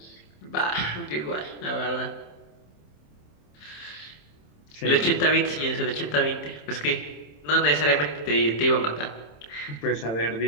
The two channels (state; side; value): late; right; 27 ms